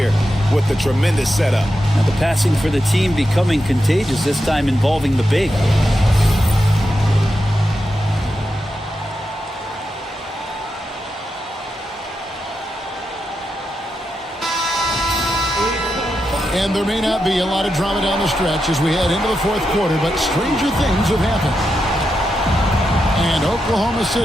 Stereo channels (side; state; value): both; normal; correlation 0.87